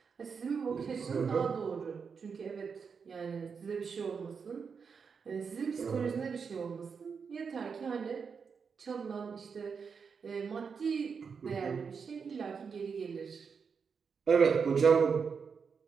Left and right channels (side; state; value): left; quieter; 5.9 dB